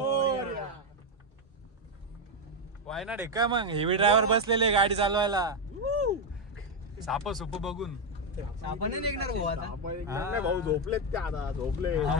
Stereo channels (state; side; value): normal; both; correlation 0.04